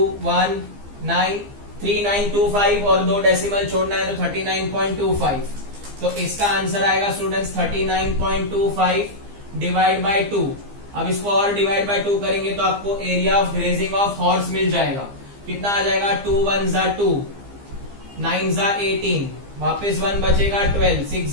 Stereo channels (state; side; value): late; left; 15 ms